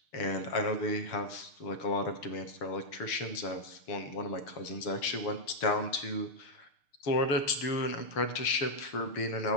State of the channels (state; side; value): late; right; 6.7 ms